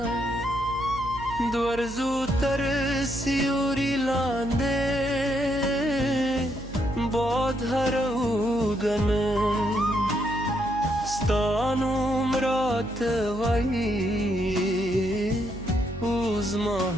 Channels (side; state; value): right; noise; hum, 14 dB below the sound